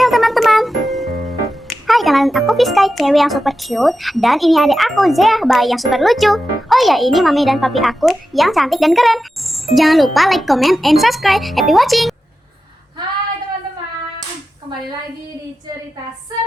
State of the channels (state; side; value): normal; both; correlation 0.92